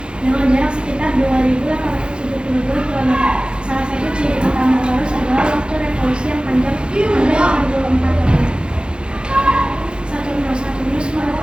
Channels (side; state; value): left; late; 0.052 ms